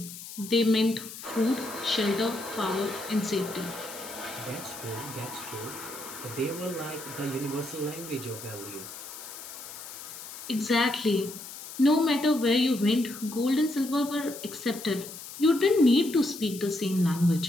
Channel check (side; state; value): left; noise; hiss, 12 dB below the sound